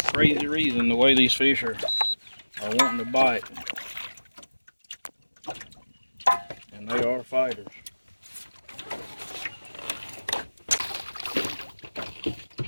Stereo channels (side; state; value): both; inverted; correlation -1.00